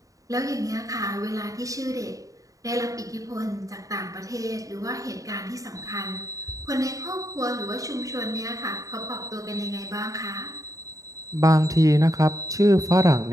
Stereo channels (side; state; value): left; late; 0.16 ms